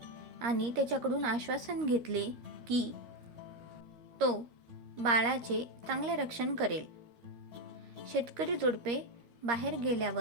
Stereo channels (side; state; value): left; late; 13 ms